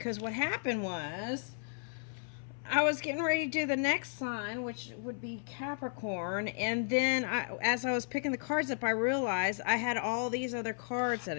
what happened was I was getting ready to do the next sign, which would be Capricorn, and then as I was picking the cards up, I realized I had all these other cards that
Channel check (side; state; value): right; silent; 55 dB below the other